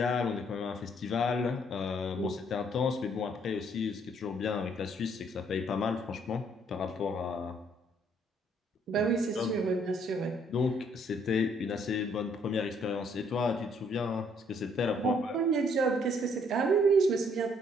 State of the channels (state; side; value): normal; both; correlation 0.66